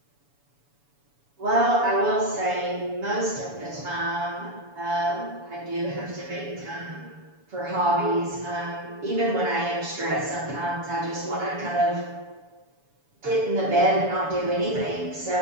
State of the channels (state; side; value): late; left; 7.0 ms